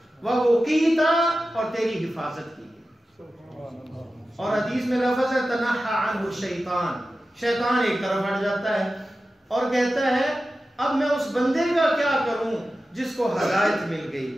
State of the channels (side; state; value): both; normal; correlation 0.93